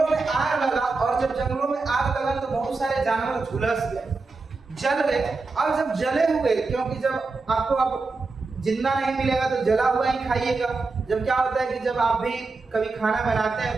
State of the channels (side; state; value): left; quieter; 3.9 dB